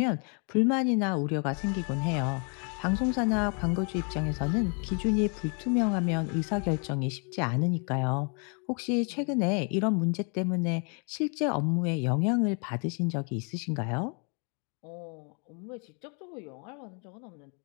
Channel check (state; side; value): quieter; right; 38.0 dB